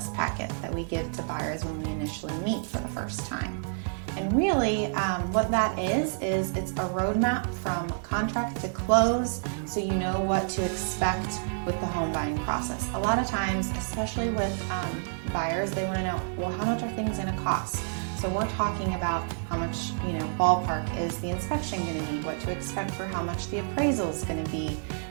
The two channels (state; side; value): silent; left; 59 dB below the other